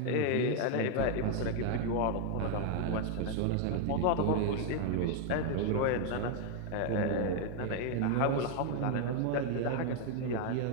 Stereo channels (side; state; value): both; different; correlation 0.00